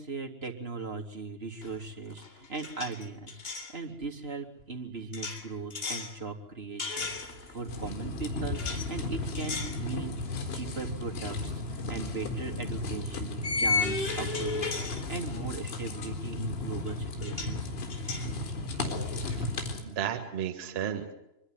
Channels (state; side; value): late; left; 2.9 ms